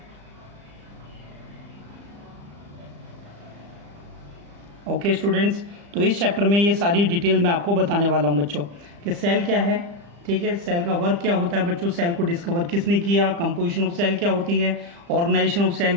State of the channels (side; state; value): left; late; 35 ms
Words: ओके स्टूडेंट्स, तो इस चैप्टर में ये सारी डिटेल मैं आपको बताने वाला हूँ बच्चों कि सेल क्या है. ठीक है, सेल का वर्क क्या होता है बच्चों, सेल को डिस्कवर किसने किया, कंपोजिशन ऑफ सेल क्या होती है, ऑर्गेनाइजेशन ऑफ सेल